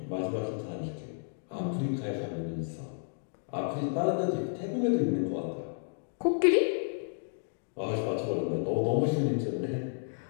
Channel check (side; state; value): right; silent; digital silence